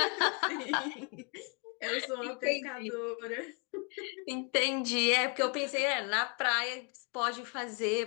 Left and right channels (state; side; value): quieter; right; 35.9 dB